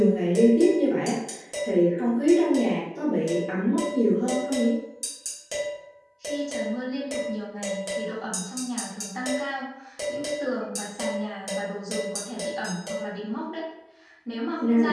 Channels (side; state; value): both; identical; correlation 1.00